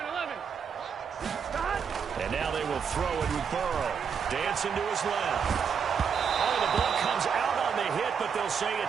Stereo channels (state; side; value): quieter; left; 6.8 dB